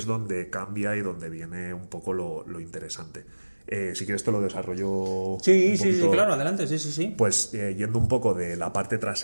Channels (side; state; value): both; inverted; correlation -1.00